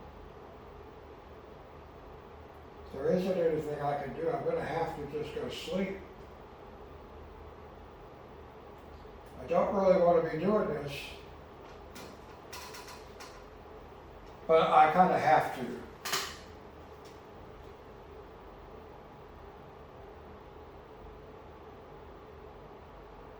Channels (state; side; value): identical; both; correlation 1.00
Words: If there isn't anything I can do, I'm going to have to just go sleep. I don't really want to be doing this, but I kind of have to.